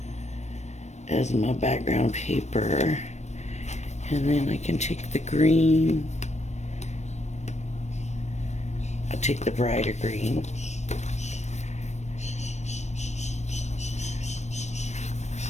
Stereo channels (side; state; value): right; late; 0.33 ms